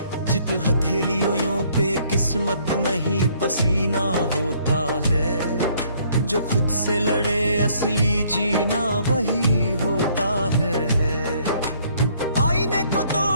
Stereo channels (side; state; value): both; inverted; correlation -0.64